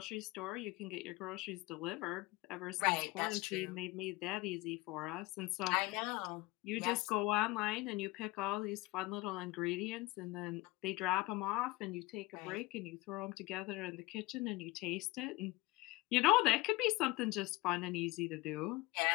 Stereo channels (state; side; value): quieter; right; 20.6 dB